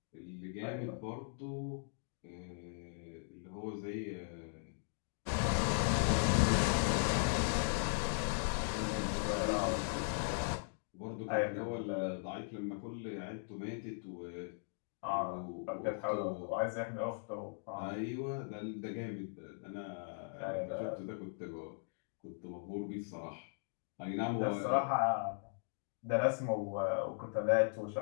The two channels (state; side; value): silent; right; digital silence